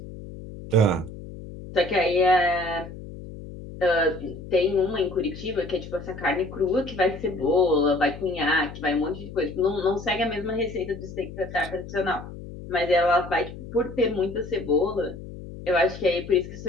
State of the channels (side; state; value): left; noise; hum, 13 dB below the sound